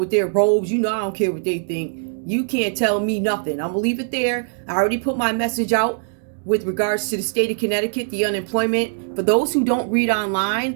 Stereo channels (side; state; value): left; silent; 65 dB below the other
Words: their robes. You know I don't care what they think. You can't tell me nothing. I'm gonna leave it there. I already put my message out with regards to the state of Connecticut, the unemployment. For those who don't read